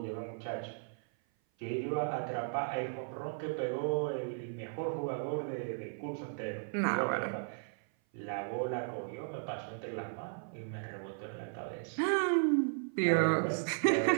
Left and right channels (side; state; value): left; silent; 54 dB below the other